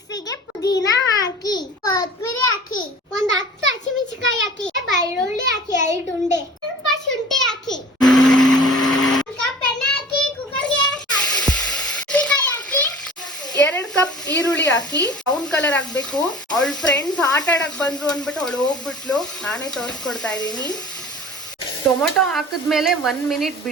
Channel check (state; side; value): normal; both; correlation 0.43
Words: ಪುದೀನ ಹಾಕಿ, ಕೊತ್ತಂಬರಿ ಹಾಕಿ, ಒಂದು 10 ಹಸಿಮೆಣಸಿನಕಾಯಿ ಹಾಕಿ, ಬೆಳ್ಳುಳ್ಳಿ ಹಾಕಿ 2 ಉಂಡೆ, ಸ್ವಲ್ಪ ಶುಂಠಿ ಹಾಕಿ, ಒಂದು ಕಪ್ ಎಣ್ಣೆ ಹಾಕಿ, ಕುಕ್ಕರ್ಗೆ ಹಾಕಿ 2 ಕಪ್ ಈರುಳ್ಳಿ ಹಾಕಿ ಬ್ರೌನ್ ಕಲರ್ ಆಗ್ಬೇಕು. ಅವಳ ಫ್ರೆಂಡ್ಸ್ ಆಟ ಆಡಕ್ ಬಂದ್ರು ಅಂದ್ಬಿಟ್ಟು ಅವಳು ಹೋಗ್ಬಿಟ್ಲು. ನಾನೇ ತೋರಿಸ್ಕೊಡ್ತಾ ಇದ್ದೀನಿ. ಟೊಮೊಟೊ ಹಾಕಿದ್ಮೇಲೆ 1 ಮಿನಿಟ್